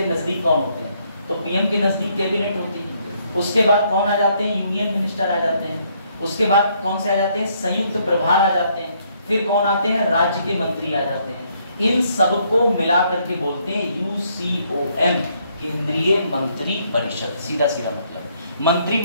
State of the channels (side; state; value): both; inverted; correlation -0.70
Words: नजदीक कौन होते हैं, तो पीएम के नजदीक कैबिनेट होती है। उसके बाद कौन आ जाते हैं? यूनियन मिनिस्टर आ जाते हैं। उसके बाद कौन से आ जाते हैं? संयुक्त प्रभार आ जाते हैं। फिर कौन आते हैं? राज्य के मंत्री आ जाते हैं। इन सबको मिला करके बोलते हैं यूसीओएम, केंद्रीय मंत्री परिषद। सीधा सीधा मतलब